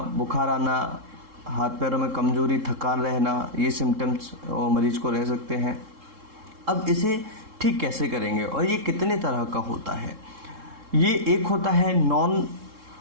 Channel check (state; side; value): late; left; 3.7 ms